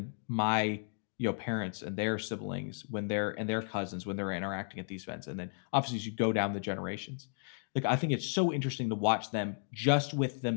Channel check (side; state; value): right; silent; 55 dB below the other